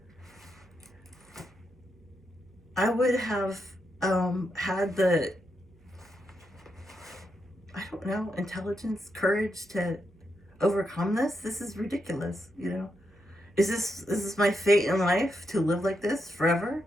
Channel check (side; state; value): right; noise; hum, 28 dB below the sound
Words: I would have had the, I don't know, intelligence, courage to overcome this. This is ridiculous, Is this my fate in life, to live like this forever?